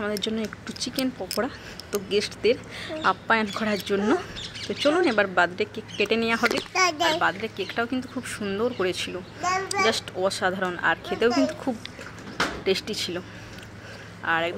আমাদের জন্য একটু চিকেন পকোড়া, তো গেস্টদের আপ্যায়ন করার জন্য। তো চলুন এবার বার্থডে কেক কেটে নেওয়া হবে। আর বার্থডে কেকটাও কিন্তু খুব সুন্দর করেছিল, জাস্ট অসাধারণ, আর খেতেও কিন্তু খুব টেস্টি ছিল। আর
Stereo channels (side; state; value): both; identical; correlation 1.00